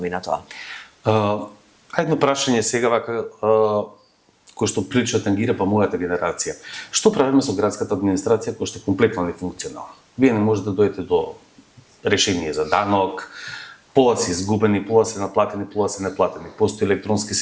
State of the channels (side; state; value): both; identical; correlation 1.00